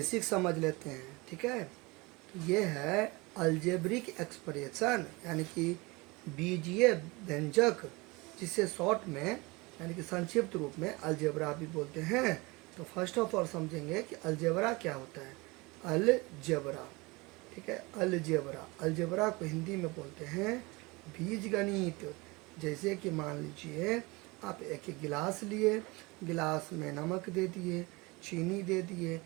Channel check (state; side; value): quieter; left; 24.7 dB